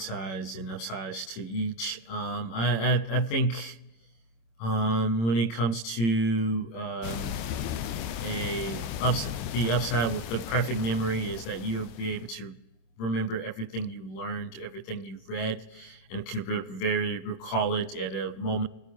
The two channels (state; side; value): late; right; 26 ms